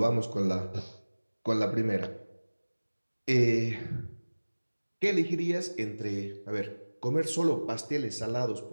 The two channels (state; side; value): inverted; both; correlation -1.00